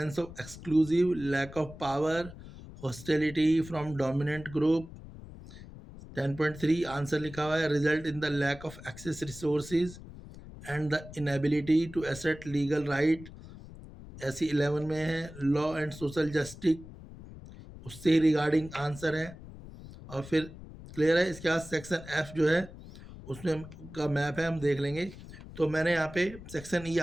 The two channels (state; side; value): noise; left; rumble, 15 dB below the sound